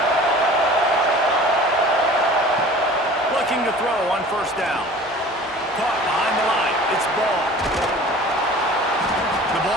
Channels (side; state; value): both; normal; correlation 0.44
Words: Looking to throw on first down. Caught behind the line. It's Ball. The